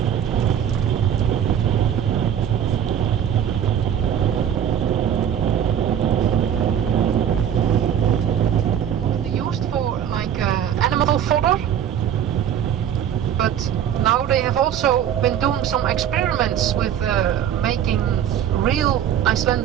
But now they have also been doing some experiments with making real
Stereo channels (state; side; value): quieter; left; 9.6 dB